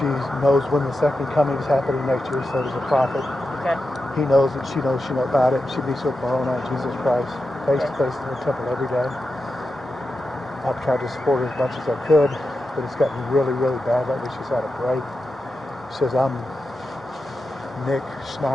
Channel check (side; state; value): both; normal; correlation 0.89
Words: knows when the second coming is happening next year, so does the prophet. Okay. He knows it, she knows about it. She meets with Moroni, Jesus Christ, face to face in the temple every day. I've tried to support her as much as I could, but it's gotten really, really bad lately. She's had a break. She says, I'm Nick